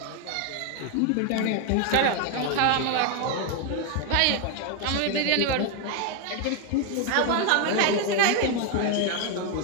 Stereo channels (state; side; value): different; both; correlation 0.01